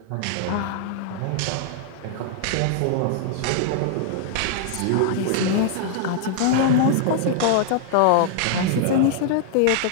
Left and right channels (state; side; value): different; both; correlation -0.01